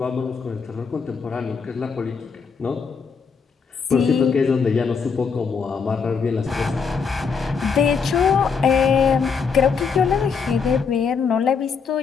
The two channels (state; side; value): quieter; right; 5.7 dB